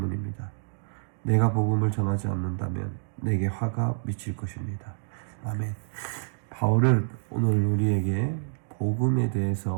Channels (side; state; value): left; silent; digital silence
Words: 내가 복음을 전하지 않는다면 내게 화가 미칠 것입니다. 아멘. 바울은 오늘 우리에게 복음에